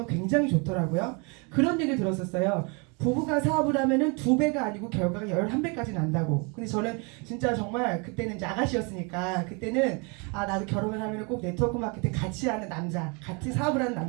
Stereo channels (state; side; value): quieter; left; 32.5 dB